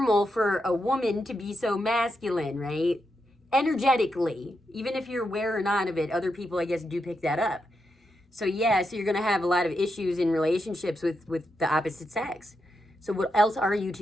for a woman to be so masculine, right? Energetically, even if you're aware or not of it, other people, I guess, do pick that up. So yeah, so you're going to have a lot of issues in relationships with the opposite sex. So what else are you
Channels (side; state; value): both; normal; correlation 0.84